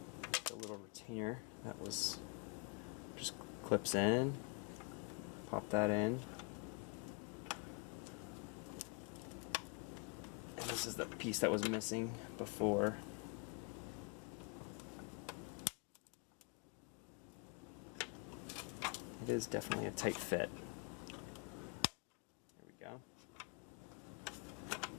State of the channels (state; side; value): quieter; right; 30.2 dB